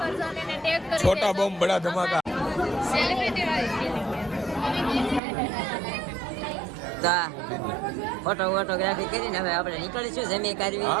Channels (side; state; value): left; drops out; at 5.2 s